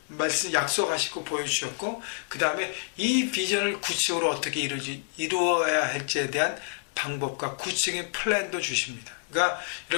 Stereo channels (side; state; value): right; quieter; 39.2 dB